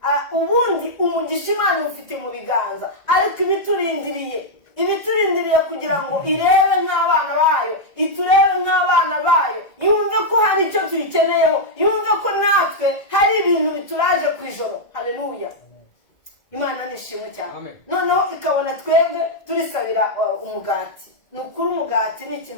Ubundi umugisha Imana ufite mu biganza, ariko ibiturindiriye kugira ngo irebe nk'abana bayo, iturebe nk'abana bayo, yumve ko hari icyo tuyikeneyeho, yumve ko natwe hari ibintu bituraje ku ijoro. Haleluya. Imana nishimwe cyane. Noneho ikabona twebwe turisabira umugati. Ni ukuri umugati ni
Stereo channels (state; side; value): late; right; 1.9 ms